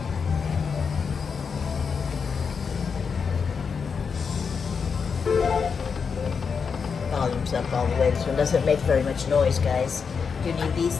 Volume's up all the way. This one doesn't make very much noise, guys. Do you need these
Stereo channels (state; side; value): quieter; right; 5.8 dB